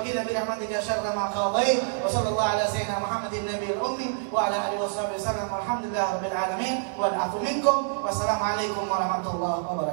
bi rahmatika syarra ma qadait wa sallallahu ala sayyidina Muhammadin nabiyil ummi wa ala alihi wasallam walhamdulillahi rabbil alamin wal afu minkum wassalamu alaikum warahmatullahi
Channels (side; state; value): left; silent; digital silence